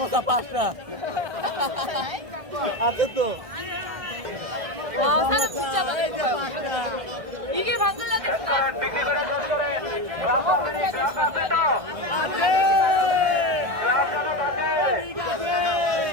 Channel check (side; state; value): left; late; 1.6 ms